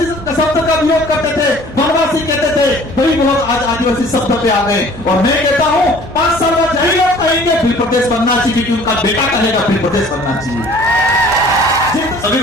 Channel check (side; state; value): both; normal; correlation 0.51